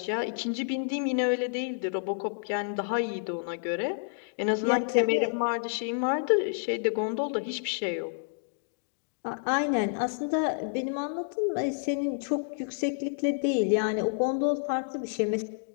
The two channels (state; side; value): silent; right; digital silence